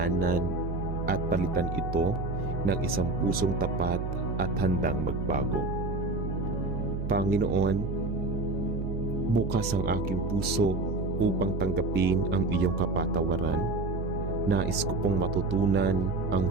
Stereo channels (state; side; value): noise; right; hum, 3 dB below the sound